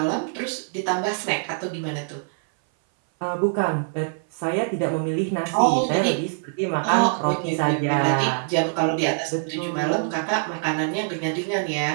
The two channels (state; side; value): silent; left; 59 dB below the other